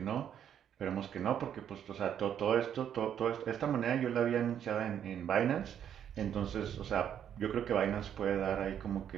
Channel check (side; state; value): left; quieter; 9.3 dB